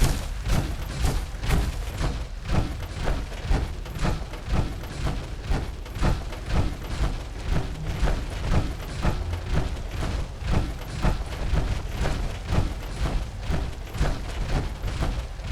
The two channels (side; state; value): both; identical; correlation 1.00